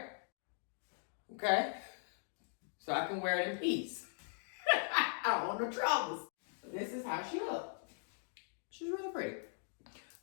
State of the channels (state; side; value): silent; right; digital silence